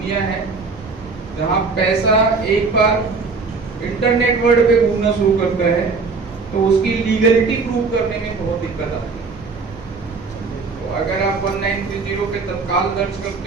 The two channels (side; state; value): left; quieter; 4.4 dB